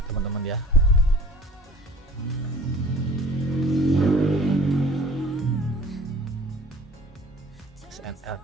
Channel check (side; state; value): both; normal; correlation 0.49